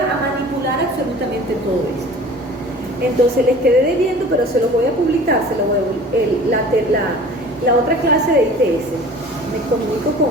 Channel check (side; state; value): both; normal; correlation 0.43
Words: manipular absolutamente todo esto. Entonces les quedé debiendo, pero se los voy a publicar, la otra clase de ITS. Me comunico